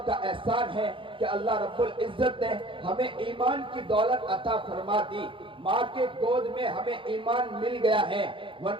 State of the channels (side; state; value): left; late; 0.25 ms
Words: एहसान है कि अल्लाह रब्बुल इज्जत ने हमें ईमान की दौलत अता फरमा दी। माँ के गोद में हमें ईमान मिल गया है,